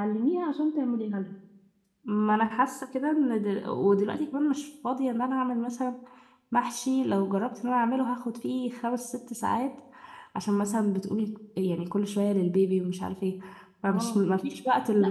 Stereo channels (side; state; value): both; identical; correlation 1.00